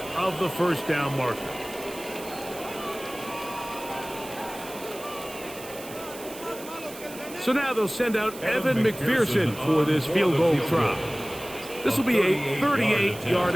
of the first down marker. So now they'll send out Evan McPherson for this field goal try. This will be a 38-yard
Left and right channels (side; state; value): right; noise; hiss, 15 dB below the sound